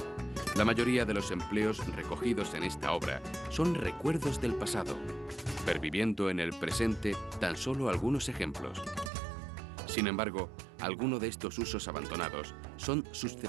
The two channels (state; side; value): drops out; left; at 9.1 s